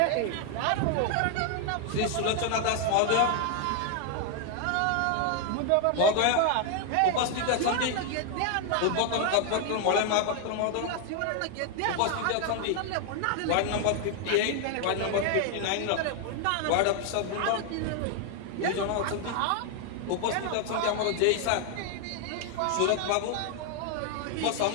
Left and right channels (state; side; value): different; both; correlation 0.00